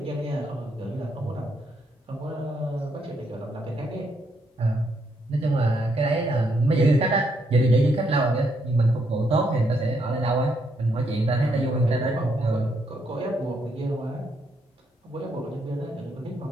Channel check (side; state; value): both; normal; correlation 0.75